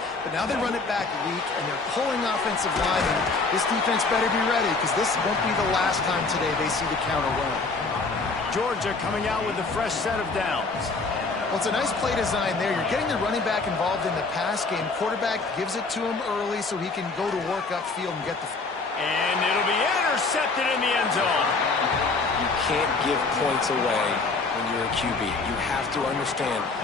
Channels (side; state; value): right; quieter; 3.9 dB